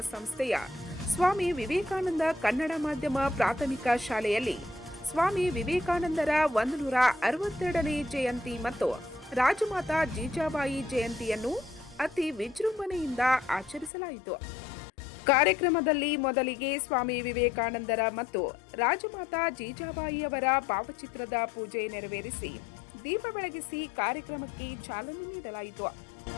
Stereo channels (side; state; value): right; drops out; at 13.9 s